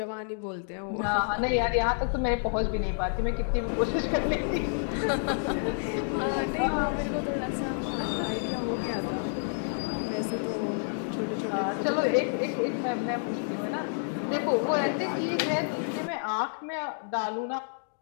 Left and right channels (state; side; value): silent; right; digital silence